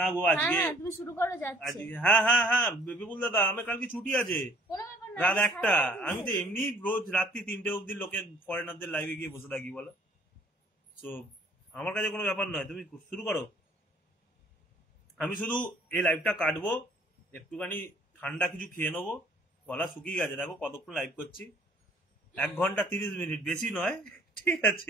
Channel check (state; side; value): normal; both; correlation 0.58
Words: না গো আজকে তুমি শুরু করো, যাচ্ছে আজকে। হ্যাঁ বিপুল দাদা, আমার কালকে ছুটি আছে, কোনো ব্যাপার না, রাত 1টা। আমি তো এমনি রোজ রাত্রি 3টে অবধি লোকের ফরেনারদের লাইভে গিয়ে বসে থাকি, বলো। সো আমার কাছে কোনো ব্যাপার নয়, তুমি শুরু করো। আমি শুধু এই লাইভটা কাটবো, একটুখানি ঠান্ডা কিছু খেয়ে নেবো, গলা শুকিয়ে গেছে, দেখো কতক্ষণ লাইভ করছি, 1 ঘন্টা 30 মিনিট, বেশি নয়, ঠিক